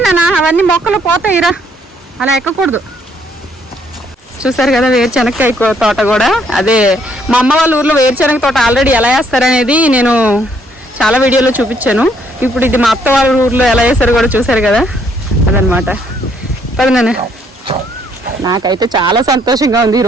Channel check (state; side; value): normal; both; correlation 0.68